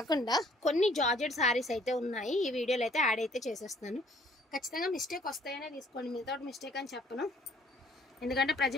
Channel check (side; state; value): both; normal; correlation 0.60